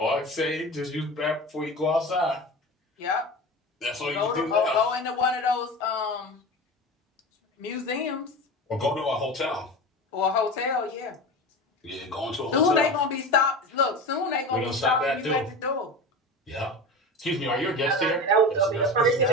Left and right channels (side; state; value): both; normal; correlation 0.30